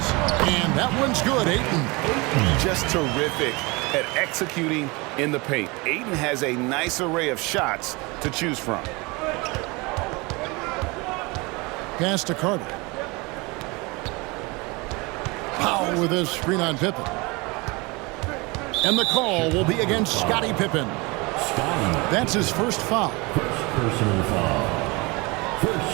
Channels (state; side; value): quieter; left; 25.9 dB